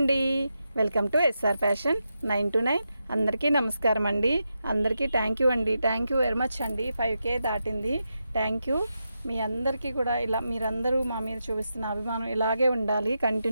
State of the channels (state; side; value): inverted; both; correlation -0.87